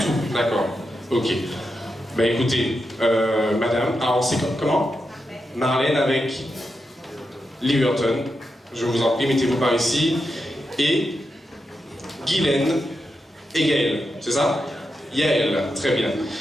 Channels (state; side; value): normal; both; correlation 0.87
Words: d'accord. Ok. Bah écoutez, madame, on sait comment? Marlène avec Liverton. Je vous en prie, mettez-vous par ici. Et Guylaine et Gaël, c'est ça? Yael, très bien.